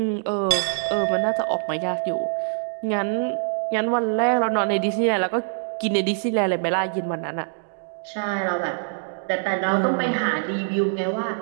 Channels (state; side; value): silent; left; digital silence